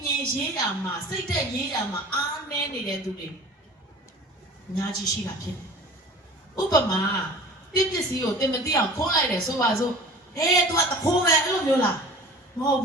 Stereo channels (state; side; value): normal; both; correlation 0.42